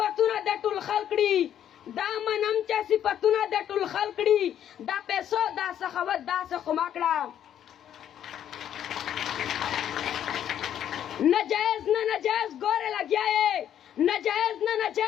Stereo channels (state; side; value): quieter; right; 10.2 dB